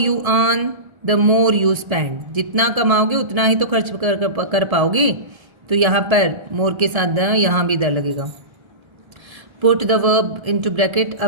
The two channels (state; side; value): late; left; 1.3 ms